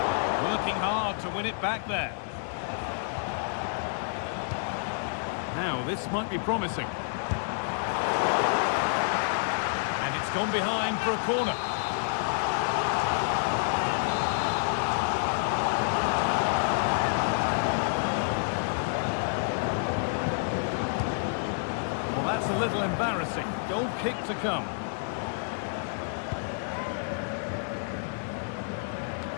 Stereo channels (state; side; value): silent; right; digital silence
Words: Working hard to win it back there. Now, this might be promising. And it's gone behind for a corner. Well, that's a little embarrassing. Goal kick to come.